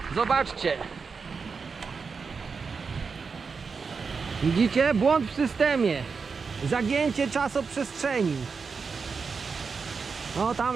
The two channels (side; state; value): left; quieter; 5.2 dB